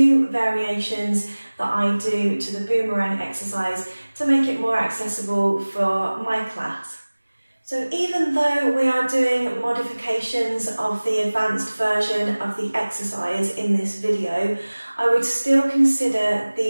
variations that I do to the boomerang exercise to make it more accessible for my class. So even though we are doing modifications of the advanced version of the exercise in this video, I would still consider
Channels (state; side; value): inverted; both; correlation -1.00